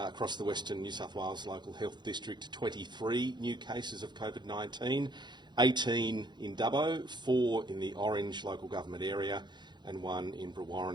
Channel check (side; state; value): left; late; 0.21 ms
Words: across the Western New South Wales Local Health District, 23 new cases of COVID-19. 18 in Dubbo, 4 in the Orange local government area and 1 in